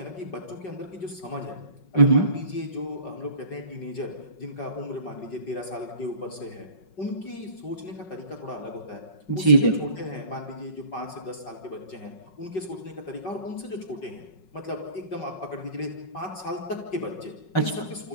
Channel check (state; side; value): late; right; 5.4 ms